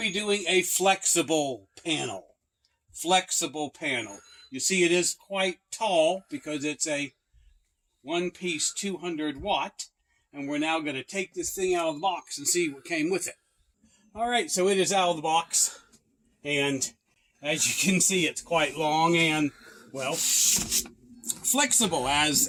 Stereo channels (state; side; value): identical; both; correlation 1.00